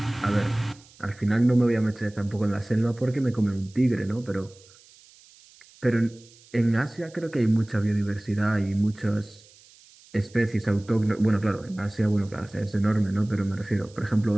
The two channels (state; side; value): noise; right; hiss, 26 dB below the sound